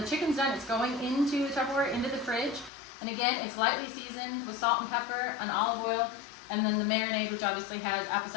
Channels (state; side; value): drops out; right; at 2.7 s